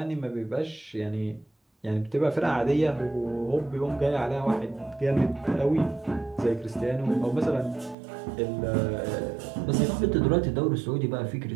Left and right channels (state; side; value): drops out; left; at 8.0 s